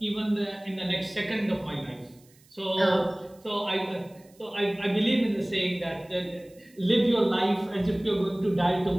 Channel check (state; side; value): noise; right; hiss, 29 dB below the sound